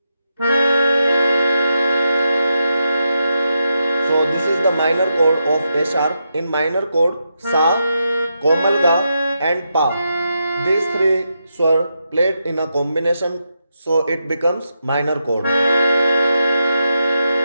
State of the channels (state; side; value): inverted; both; correlation -0.85